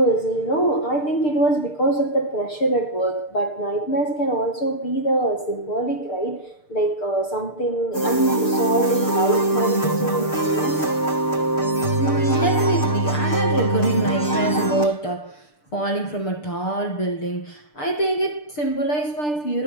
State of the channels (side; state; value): right; late; 6.7 ms